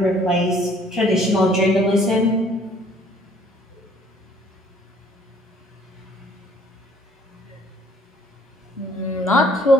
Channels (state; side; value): normal; both; correlation 0.58